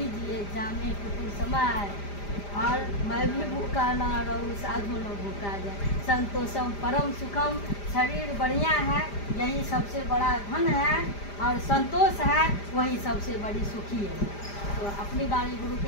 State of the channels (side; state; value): right; late; 5.0 ms